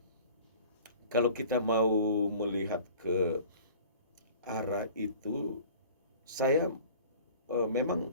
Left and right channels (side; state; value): both; inverted; correlation -0.46